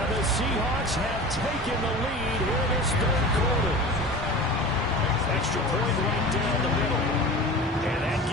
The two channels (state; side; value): normal; both; correlation 0.35